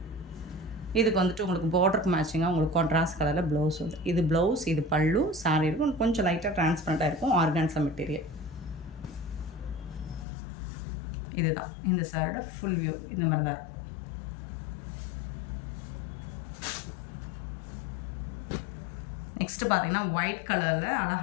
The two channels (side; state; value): right; drops out; at 10.2 s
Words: இதுக்கு வந்துட்டு உங்களுக்கு பார்டருக்கு மேட்சிங்காக உங்களுக்கு கான்ட்ராஸ்ட் கலரில் ப்ளவுஸ் வந்து இது ப்ளவுஸ், இது பல்லு. சாரி இருக்கும் கொஞ்சம் லைட்டாக டிரான்ஸ்பரண்ட்டாக இருக்கும். ஆர்கான்ஸா மெட்டீரியல் இதுதான். இந்த சாரோட ஃபுல் வியூ இந்த மாதிரி தான் இருக்கும். நெக்ஸ்ட்டு பார்த்திங்கன்னா ஒயிட் கலரில்